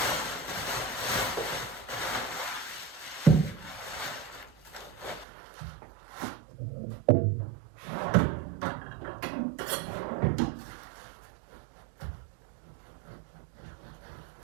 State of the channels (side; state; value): left; drops out; at 5.2 s